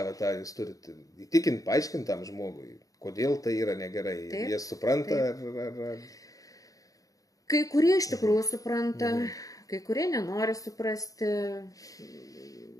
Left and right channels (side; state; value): right; late; 0.17 ms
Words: tą, jūs turite įtikinti, paaiškinti tam žmogui, kodėl tai yra negerai. Jie supranta ar... Kai kurie iš tikrųjų supranta, kai kurie nenori suprasti,